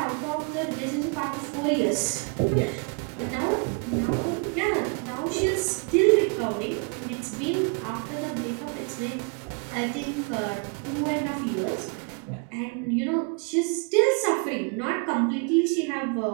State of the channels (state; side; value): quieter; left; 38.2 dB